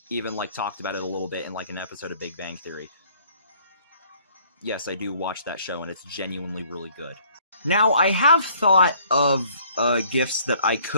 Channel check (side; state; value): both; inverted; correlation -0.59